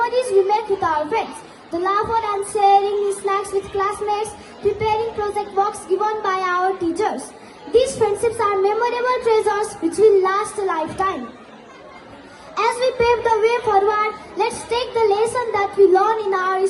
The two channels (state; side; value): identical; both; correlation 1.00